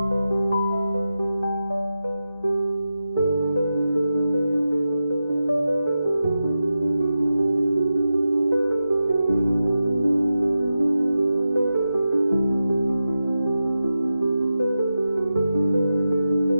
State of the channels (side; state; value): both; inverted; correlation -0.91